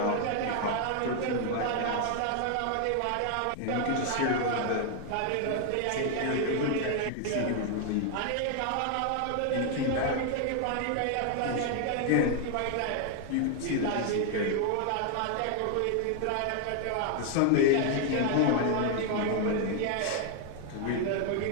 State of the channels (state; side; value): different; both; correlation 0.00